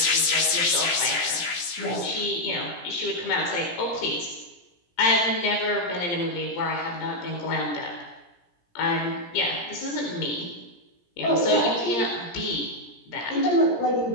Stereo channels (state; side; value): late; right; 17 ms